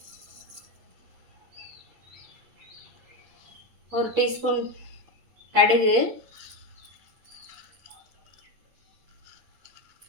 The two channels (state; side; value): late; left; 8.5 ms